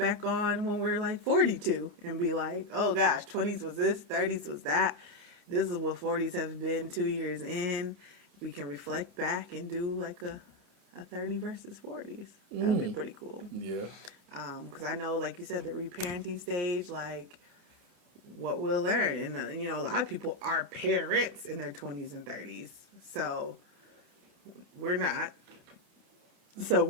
on when we're like 42 and be like, oh gosh, 20s was this, 30s was that. This is what 40s have been 2 years in. We can reflect back and do like a 30 versus 40s. That would be pretty cool. Yeah. Because I know, like you said, the reparenting stage, like what we'll learn. And, a lot of people are parents in their 20s and 30s. So we're not. So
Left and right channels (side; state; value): left; late; 28 ms